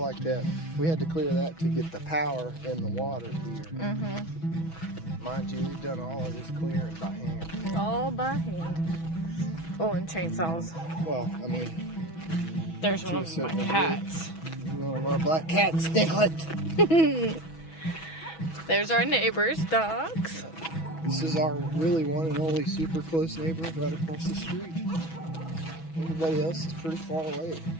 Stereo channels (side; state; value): right; late; 6.1 ms